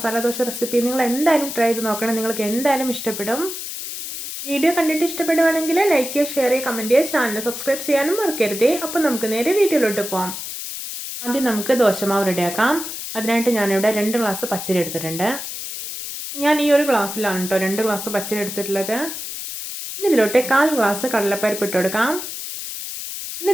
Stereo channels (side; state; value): left; noise; hiss, 7 dB below the sound